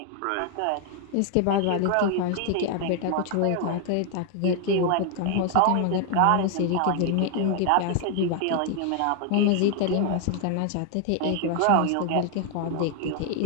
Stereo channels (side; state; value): both; different; correlation 0.00